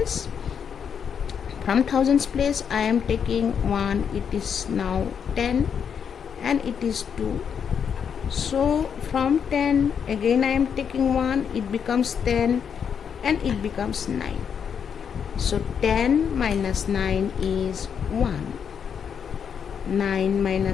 From thousands place I am taking 1, it is now 10 and it is 2. So from 10 again I am taking 1, it becomes 10 and it becomes 9. So 10 minus 9 is 1. 9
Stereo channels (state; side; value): quieter; right; 7.3 dB